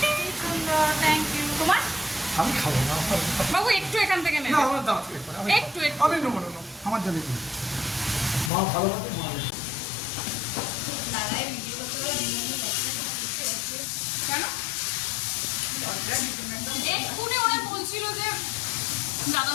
থ্যাংক ইউ। তোমার আমি খাবো না। বাবু একটু এখান থেকে না নেবে, আমার দাও একটু আমি নেবো না, আমার জানি না। মা ভালো আছে, মা কেন এক্ষুনি ওরা বলছিল যে দাদা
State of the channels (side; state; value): right; drops out; at 8.5 s